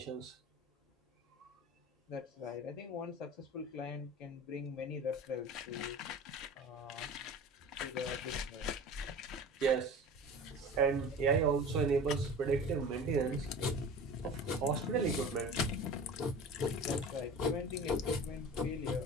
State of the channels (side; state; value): both; normal; correlation 0.37